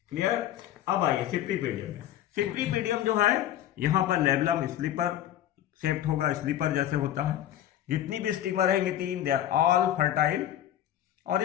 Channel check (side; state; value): right; quieter; 12.0 dB